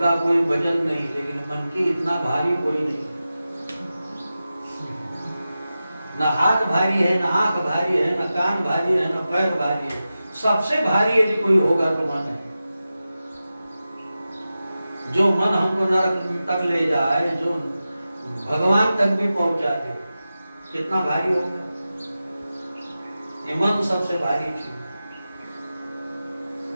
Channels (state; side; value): inverted; both; correlation -0.93